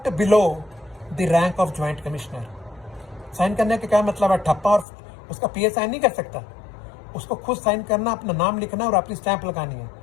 below the rank of joint commissioner. Sign करने का क्या मतलब है? ठप्पा और उसका PA साइन नहीं कर सकता, उसको खुद साइन करना, अपना नाम लिखना और अपनी स्टैंप लगानी है,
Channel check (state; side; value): drops out; right; at 4.9 s